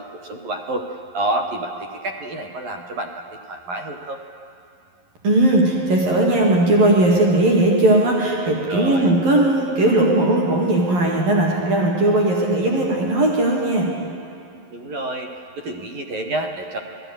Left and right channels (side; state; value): left; late; 11 ms